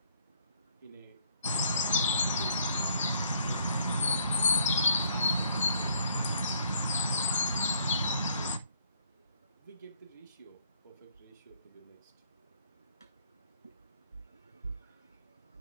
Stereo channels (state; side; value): inverted; both; correlation -0.64